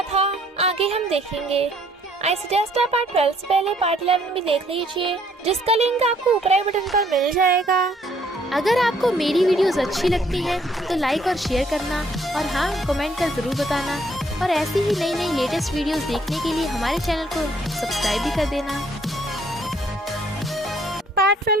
था। आगे हम देखेंगे। आई सजेस्ट आप पार्ट 12 से पहले पार्ट 11 भी देख लीजिए, जिसका लिंक आपको ऊपर आई बटन पर मिल जाएगा। अगर आपको मेरी वीडियोस अच्छी लगती है तो लाइक और शेयर करना, और हाँ, कमेंट कर जरूर बताना। और ऐसी ही नई नई लेटेस्ट वीडियोस देखने के लिए हमारे चैनल को सब्सक्राइब भी कर देना। पार्ट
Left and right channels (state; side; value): normal; both; correlation 0.65